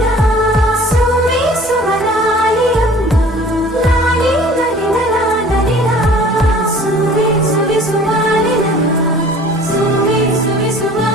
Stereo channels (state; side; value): normal; both; correlation 0.48